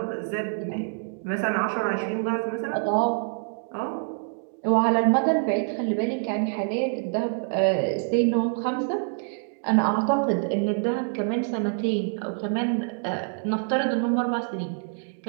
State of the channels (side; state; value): left; silent; 59 dB below the other